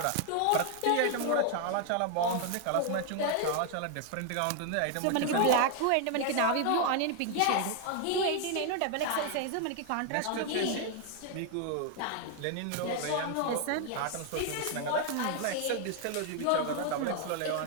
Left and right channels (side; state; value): both; different; correlation 0.00